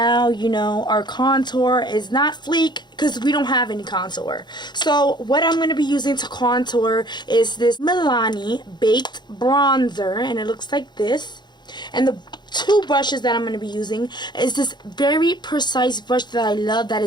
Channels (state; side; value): late; right; 0.21 ms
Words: you know, our contour is not Fleek because we don't have any contour. So what I'm going to be using to contour is this Milani Baked Bronzer. And it looks like this. And the two brushes that I'm going to be using is this very precise brush that I love that